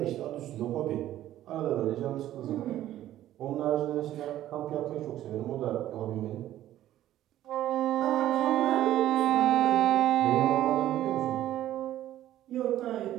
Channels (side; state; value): left; quieter; 13.1 dB